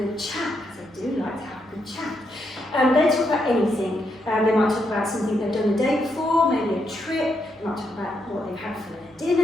chat, because they do like to have a good chat. They talk about anything. They might talk about something they've done the day before, maybe a trip. They might talk about what they've had for their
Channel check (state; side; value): normal; both; correlation 0.80